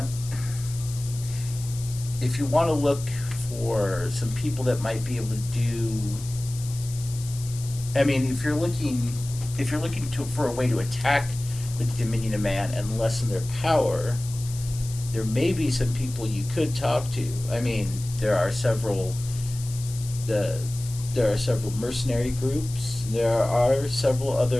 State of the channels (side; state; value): left; noise; hiss, 14 dB below the sound